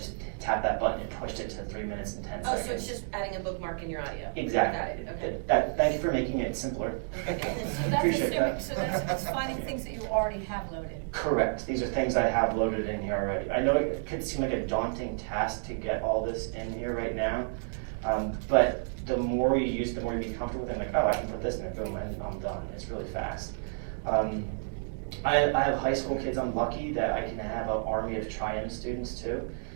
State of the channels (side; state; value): left; silent; digital silence